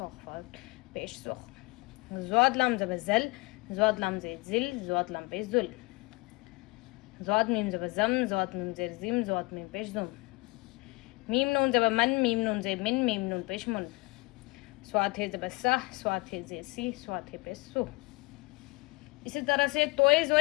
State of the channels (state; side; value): quieter; right; 25.6 dB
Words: ख्वाफ पेश सुख, ज़्वाद लाम ज़बर ज़ल, ज़्वाद लाम जे ज़िल, ज़्वाद लाम पे ज़ुल, ज़्वाद मीम ज़बर ज़म, ज़्वाद मीम ज़ेर ज़िम, ज़्वाद मीम पेश ज़ुम, मीम नून ज़बर मन, मीम नून जे मिन, मीम नून पेश मुन, स्वाद है ज़बर सह, स्वाद है जे सी, स्वाद है पे सु। इसी तरह से तोए